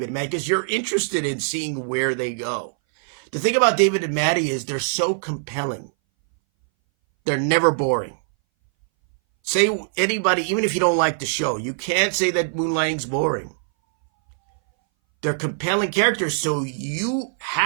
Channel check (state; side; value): silent; left; 61 dB below the other